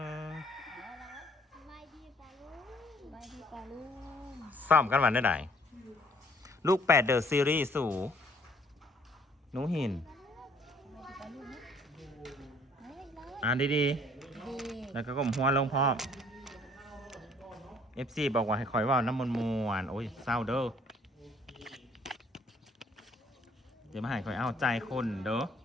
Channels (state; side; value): normal; both; correlation 0.60